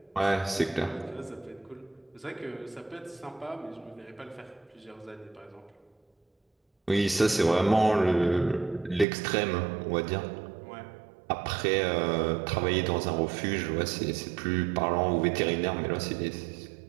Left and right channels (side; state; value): left; drops out; at 9.1 s